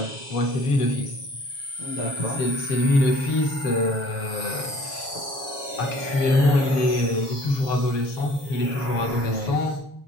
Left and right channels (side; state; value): right; late; 7.2 ms